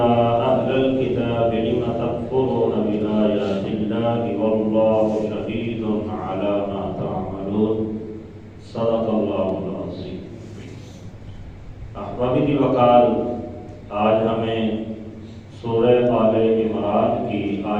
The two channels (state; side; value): identical; both; correlation 1.00